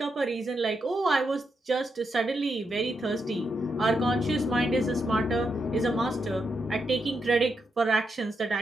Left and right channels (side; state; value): both; normal; correlation 0.83